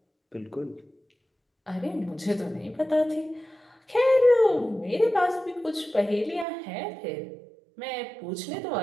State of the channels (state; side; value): drops out; left; at 6.5 s